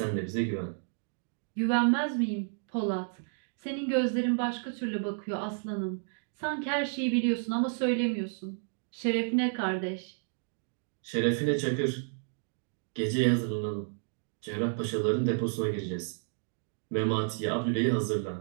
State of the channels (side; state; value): left; silent; digital silence